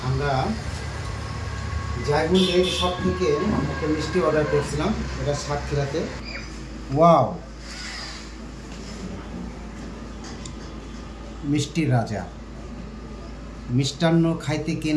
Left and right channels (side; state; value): both; identical; correlation 1.00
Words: আমরা জায়গুন ডেইরি শপ থেকে একটা মিষ্টি অর্ডার করছিলাম, এটা সাতক্ষীরাতে। ওয়াও, মিষ্টির রাজা। মিষ্টান্ন খাইতে কে